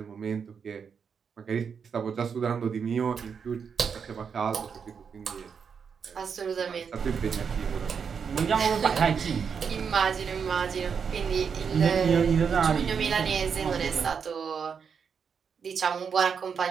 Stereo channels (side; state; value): left; quieter; 6.5 dB